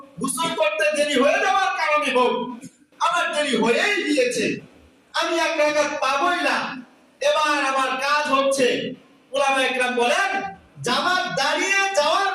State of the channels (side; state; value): both; identical; correlation 1.00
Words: গোসল করতে দেরি হয়ে যাওয়ার কারণে হোক, আমার দেরি হয়েই গিয়েছে, আমি এক রাকাত পাবোই না। এবার আমার কাজ হচ্ছে, উলামায়ে কেরাম বলেন, জামাত দাঁড়িয়ে যাওয়ার